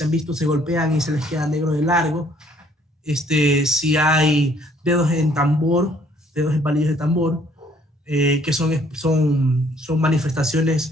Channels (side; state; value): both; normal; correlation 0.62